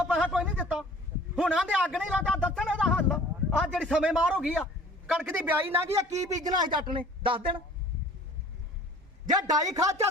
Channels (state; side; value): normal; both; correlation 0.49